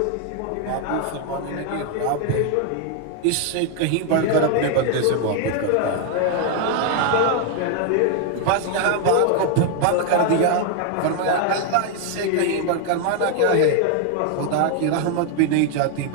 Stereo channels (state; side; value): different; both; correlation 0.00